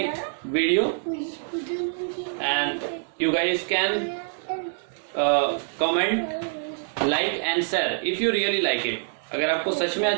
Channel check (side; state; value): left; silent; digital silence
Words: video and you guys can comment, like and share if you really like it. अगर आपको सच में